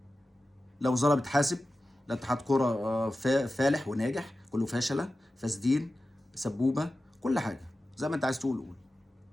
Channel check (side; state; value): both; normal; correlation 0.94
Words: لا وزاره بتحاسب، لا اتحاد كوره فالح وناجح، كله فاشله، فاسدين، سبوبه، كل حاجه زي ما انت عايز تقول قول.